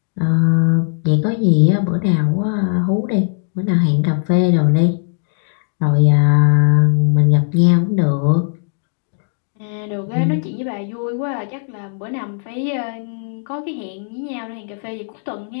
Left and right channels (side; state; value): right; silent; digital silence